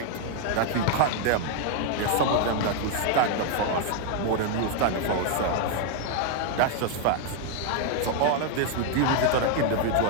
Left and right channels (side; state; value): both; different; correlation 0.00